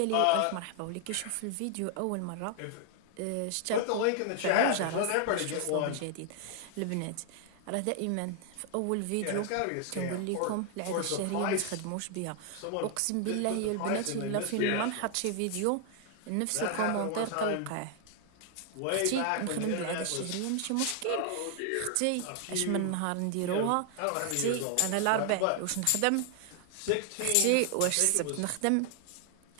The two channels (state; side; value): different; both; correlation 0.00